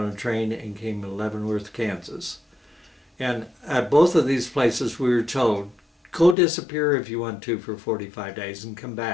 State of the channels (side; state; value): right; drops out; at 6.4 s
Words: a train and came to Leavenworth, Kansas. And at both of these places we were told, go disappear if you want to for 45 days and come